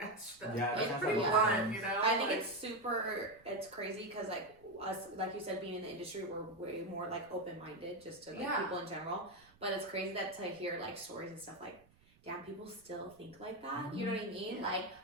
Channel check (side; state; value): right; noise; rumble, 29 dB below the sound